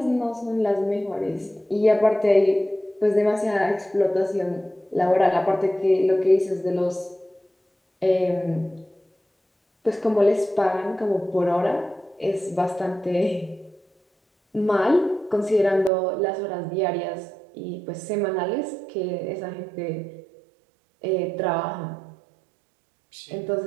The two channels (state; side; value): drops out; left; at 15.9 s